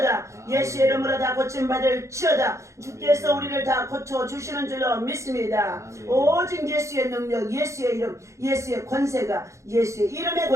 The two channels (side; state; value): left; late; 0.14 ms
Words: 예수의 이름으로 다 고침받을 지어다. 주께서 우리를 다 고쳐주시는 줄로 믿습니다. 오직 예수의 능력, 예수의 이름, 예수의 권세가, 예수의 이름의